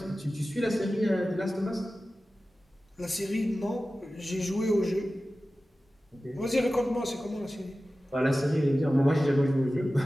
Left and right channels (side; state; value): both; normal; correlation 0.95